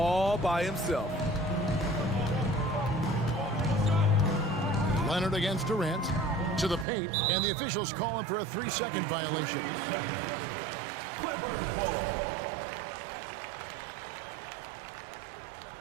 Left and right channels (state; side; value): drops out; left; at 6.9 s